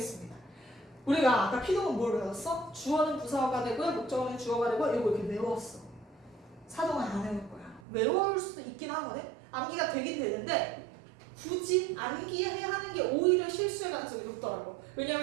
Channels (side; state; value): left; drops out; at 7.8 s